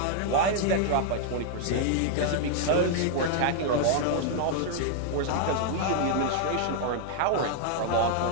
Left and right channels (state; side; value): different; both; correlation 0.00